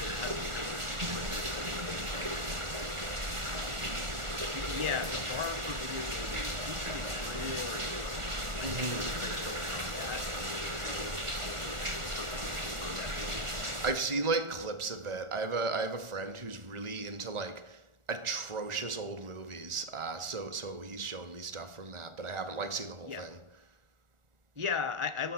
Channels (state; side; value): late; left; 1.4 ms